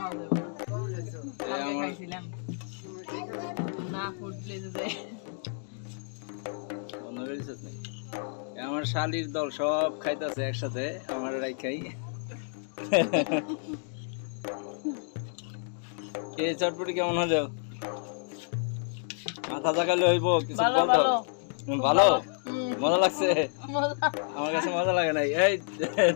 যাবে না কালকে খাইছিলাম না ফুড প্লেসে যাই বন্ধ করে দিছিস নাকি? আমার শালির দল সব খাইতেছে একসাথে আমার রাইখাই কে চটপটি কেমন হলো মাথা জাগালে হইব কিছু ভালো বলতো ভালো ভালো মজা লাগছে মজা আমার কাছে মজা লাগে নাই এই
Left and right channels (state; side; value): silent; right; 58 dB below the other